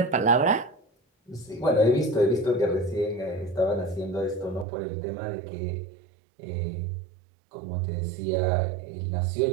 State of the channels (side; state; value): left; drops out; at 4.7 s